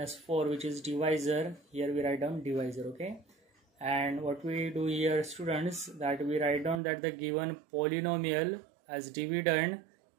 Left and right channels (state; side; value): drops out; left; at 6.8 s